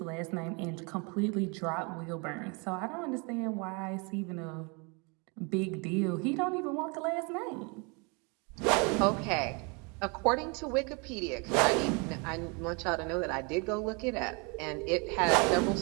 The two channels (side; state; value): left; quieter; 31.4 dB